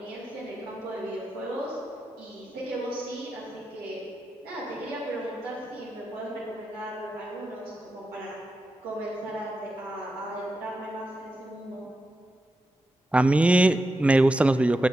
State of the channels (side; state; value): both; normal; correlation 0.88